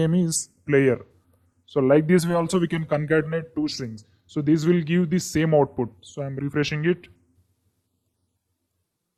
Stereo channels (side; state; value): both; identical; correlation 1.00